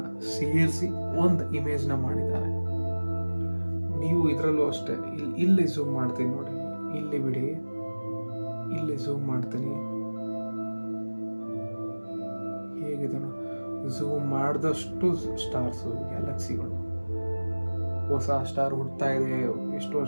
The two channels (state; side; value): inverted; both; correlation -1.00